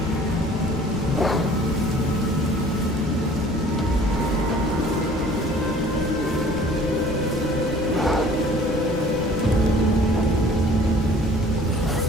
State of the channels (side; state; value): both; normal; correlation 0.51